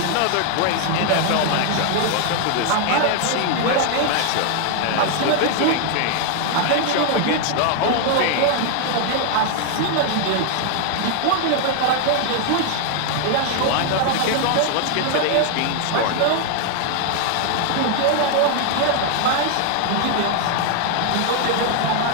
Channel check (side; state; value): both; different; correlation 0.00